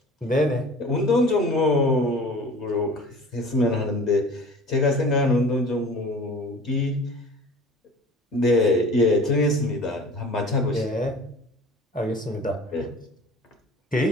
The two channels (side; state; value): both; normal; correlation 0.43